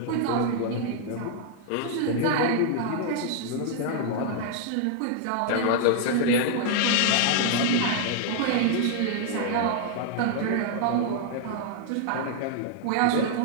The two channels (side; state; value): both; different; correlation -0.01